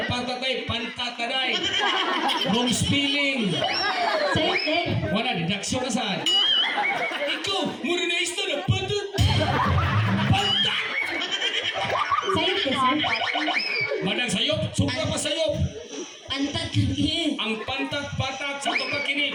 patatay, pantatanay. Wrong spelling. Sa'yo, Ted! Wala, didaksyon na saan. Ikaw, muna na isda na patat. Pantat! Sa'yo, Ted, sir! Manang sayop, suka pa sayop. Pantat lagi. Ang pantat, patat, sa ito pa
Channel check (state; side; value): identical; both; correlation 1.00